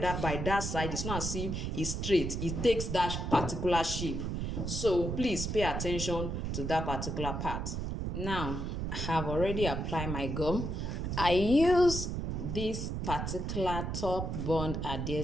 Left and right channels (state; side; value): noise; right; rumble, 3 dB below the sound